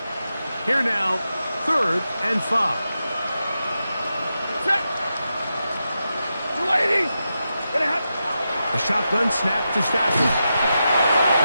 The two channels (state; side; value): inverted; both; correlation -0.89